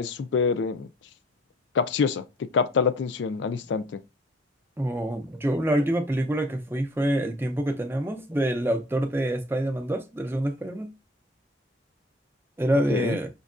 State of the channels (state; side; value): normal; both; correlation 0.54